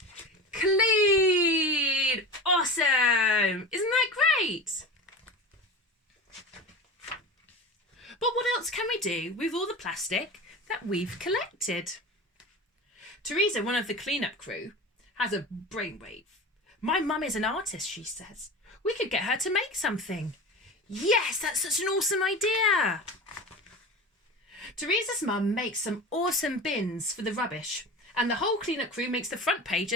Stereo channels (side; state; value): both; normal; correlation 0.31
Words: clean. Awesome. Isn't that great? But what else can we do with all the plastic that we've collected? Teresa, one of the clean-up crew, has a brainwave. My mum is an artist, she says. We could get her to make something. Yes, that's such an awesome idea. Teresa's mum makes some awesome bins for the rubbish, and the whole clean-up crew makes the front